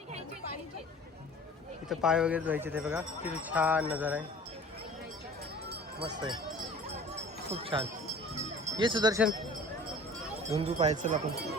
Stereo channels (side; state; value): both; normal; correlation 0.44